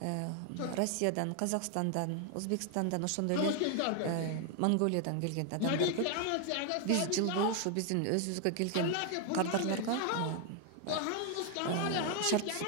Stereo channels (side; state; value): both; different; correlation 0.00